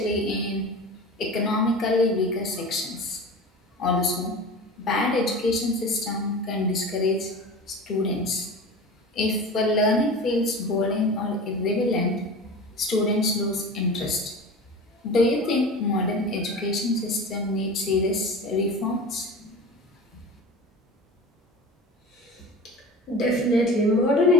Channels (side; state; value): both; normal; correlation 0.34